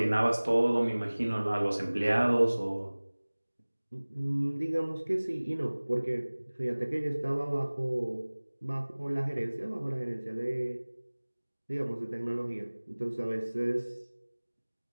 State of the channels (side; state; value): both; inverted; correlation -1.00